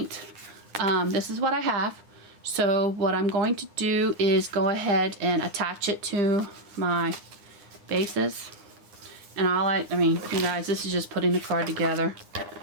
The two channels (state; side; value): late; left; 9.7 ms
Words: this is what I have. So what I'm going to do is go ahead and attach it to my bases. And I mean, you guys, this is just putting the card together.